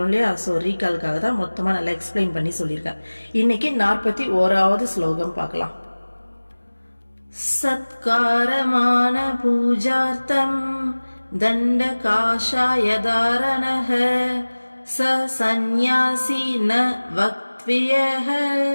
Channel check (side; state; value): both; inverted; correlation -1.00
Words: இல்லையா, ஸோ ரீகாலுக்காக தான் மொத்தமா நல்லா எக்ஸ்பிளைன் பண்ணி சொல்லியிருக்கேன். இன்னைக்கு 41வது ஸ்லோகம் பார்க்கலாம். சத்காரமான பூஜார்த்தம் தண்ட காஷாயதாரணஹ ச சந்நியாசி ந வக்த்வியஹ